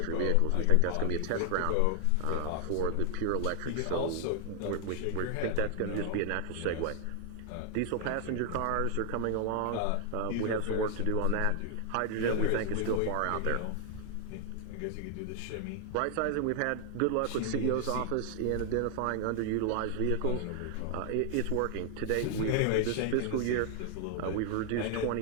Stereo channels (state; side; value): different; both; correlation 0.00